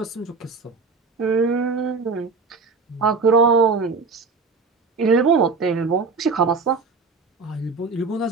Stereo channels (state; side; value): quieter; left; 4.4 dB